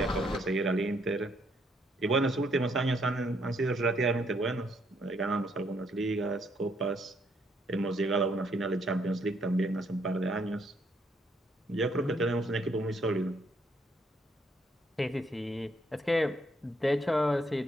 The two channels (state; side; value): normal; both; correlation 0.71